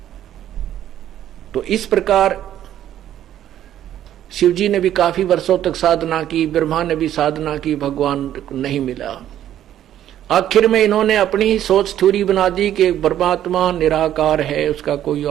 तो इस प्रकार शिव जी ने भी काफी वर्षों तक साधना की, ब्रह्मा ने भी साधना की, भगवान नहीं मिला। आखिर में इन्होंने अपनी ही सोच थ्योरी बना दी कि परमात्मा निराकार है, उसका कोई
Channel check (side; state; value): left; quieter; 11.5 dB